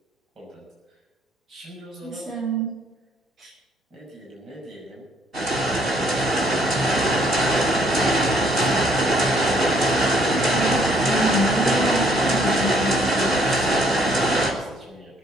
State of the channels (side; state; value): both; normal; correlation 0.66